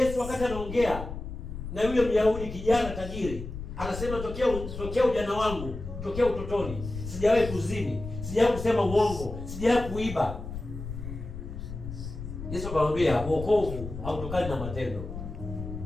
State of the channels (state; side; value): noise; left; rumble, 9 dB below the sound